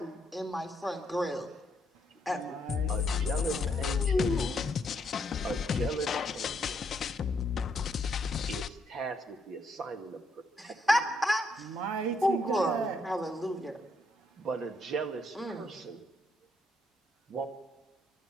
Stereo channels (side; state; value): both; normal; correlation 0.75